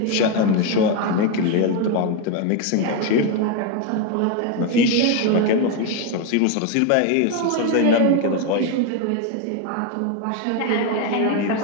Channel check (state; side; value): different; both; correlation 0.02